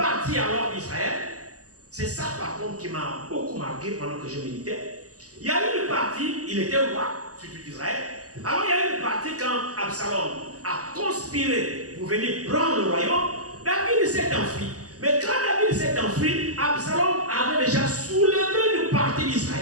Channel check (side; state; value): left; late; 0.66 ms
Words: alors d'Israël. C'est ça par contre qui m'a beaucoup marqué pendant que je méditais. Il y a eu une partie, il était roi, surtout d'Israël. Alors il y a eu une partie quand Absalom a conspiré pour venir prendre le royaume. David s'est enfui. Mais quand David s'est enfui, Absalom avait déjà soulevé une partie